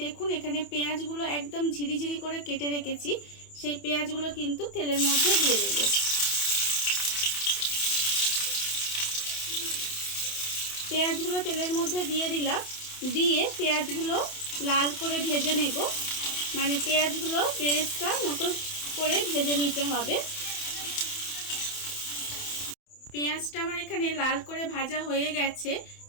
দেখুন এখানে পেঁয়াজগুলো একদম ঝিরিঝিরি করে কেটে রেখেছি। সেই পেঁয়াজগুলো কিন্তু তেলের মধ্যে দিয়ে দেব। পেঁয়াজগুলো তেলের মধ্যে দিয়ে দিলাম। দিয়ে পেঁয়াজগুলো লাল করে ভেজে নেব। মানে পেঁয়াজগুলো বেরেস্তা মতো করে ভেজে নিতে হবে। পেঁয়াজটা আমার এখানে লাল করে ভাজা হয়ে গেছে।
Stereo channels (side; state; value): right; late; 28 ms